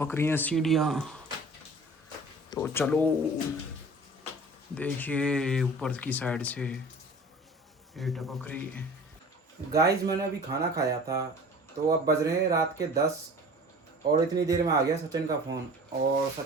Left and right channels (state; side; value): normal; both; correlation 0.43